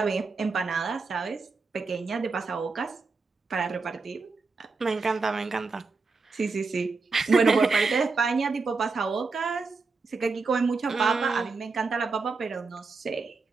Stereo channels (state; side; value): quieter; left; 4.3 dB